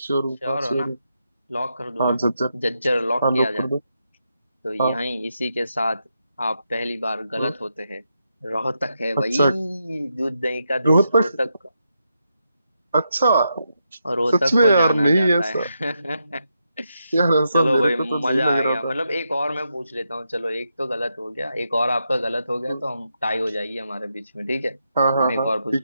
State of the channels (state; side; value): inverted; both; correlation -0.84